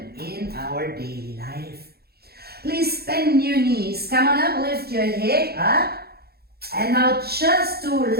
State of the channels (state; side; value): late; left; 0.46 ms